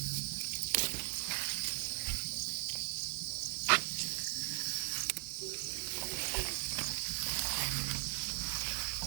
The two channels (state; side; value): silent; left; digital silence